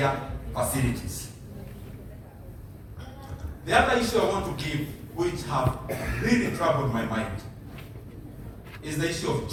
facilities. The other issue I want to give, which have really troubled my mind, is the issue of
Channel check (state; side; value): identical; both; correlation 1.00